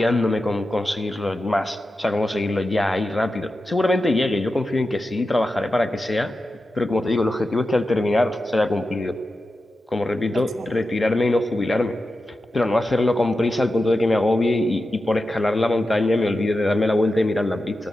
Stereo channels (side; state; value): both; normal; correlation 0.91